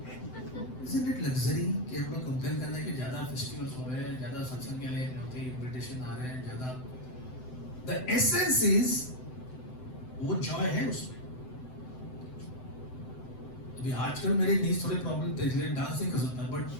isn't it luxury कि हम लोग कंप्लेन करना है कि ज्यादा फेस्टिवल्स हो रहे हैं, ज्यादा सत्संग के लिए होते इनविटेशन आ रहे हैं ज्यादा। द एसेंस इज वो जॉय है उसमें। अभी आजकल मेरे नीज थोड़े प्रॉब्लम थे इसलिए डांस नहीं कर सकता, बट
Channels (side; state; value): right; late; 7.8 ms